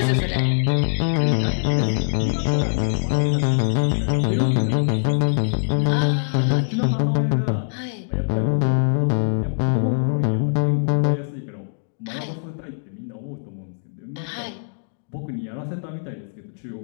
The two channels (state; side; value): silent; right; digital silence